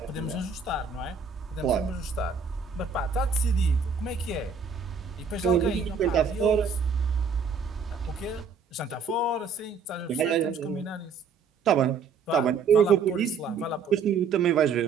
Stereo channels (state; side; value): quieter; left; 5.4 dB